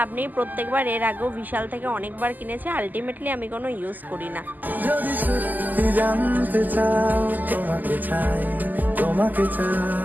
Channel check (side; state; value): left; late; 0.084 ms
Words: নেই। প্রত্যেকবার এর আগেও বিশাল থেকে অনেকবার কিনেছি, আলটিমেটলি আমি কোনো ইউজ করি না। যদি সত্যি জানতে চাও তোমাকে চাই, তোমাকে